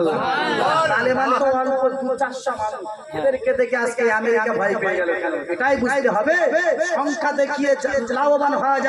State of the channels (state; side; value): identical; both; correlation 1.00